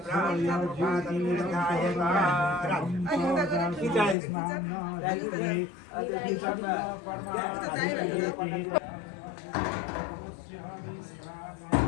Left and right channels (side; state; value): right; drops out; at 4.2 s